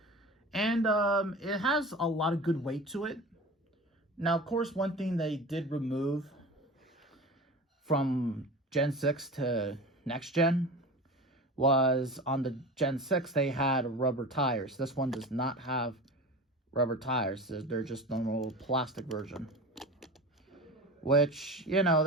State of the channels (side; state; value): both; normal; correlation 0.32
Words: And it has a lot of good weight to it. Now, of course, one thing they did remove from Gen 6 to next gen was on the Gen 6, they had rubber tires. This one does not have rubber tires. They're just normal plastic version. Which, you know,